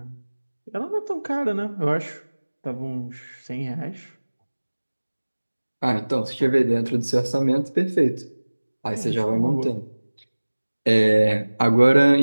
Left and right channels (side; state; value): both; inverted; correlation -1.00